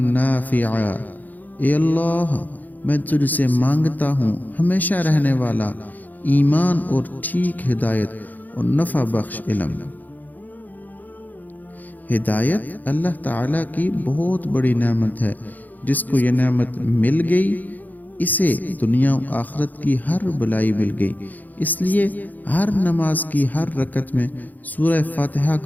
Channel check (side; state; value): right; late; 0.083 ms